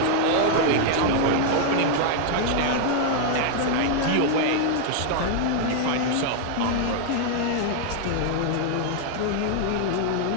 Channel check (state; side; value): different; both; correlation 0.00